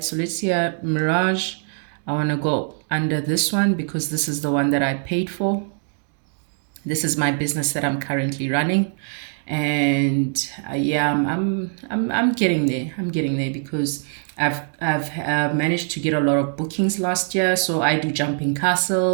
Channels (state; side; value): silent; left; digital silence